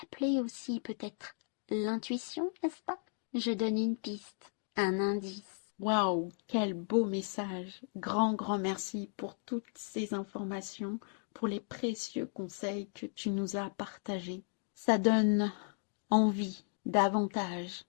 aussi peut-être l'intuition, n'est-ce pas? Je donne une piste, un indice. Waouh, quel beau message! Grand merci pour toutes ces informations, pour les précieux conseils que tu nous as partagés. Ça donne envie davantage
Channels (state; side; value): silent; right; 54 dB below the other